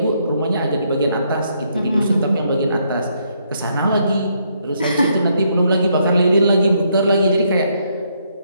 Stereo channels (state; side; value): inverted; both; correlation -0.74